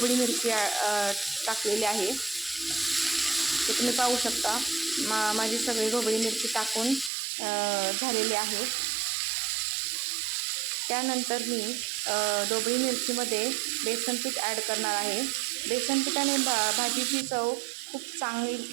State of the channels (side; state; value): left; drops out; at 7.1 s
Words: मिरची टाकलेली आहे. ते तुम्ही पाहू शकता. माझी सगळी ढोबळी मिरची टाकून झालेली आहे. त्यानंतर मी ढोबळी मिरचीमध्ये बेसन पीठ ॲड करणार आहे. बेसन पिठाने भाजीची चव खूप